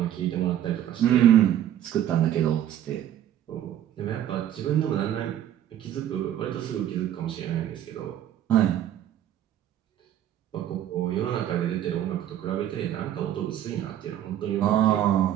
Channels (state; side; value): quieter; left; 11.2 dB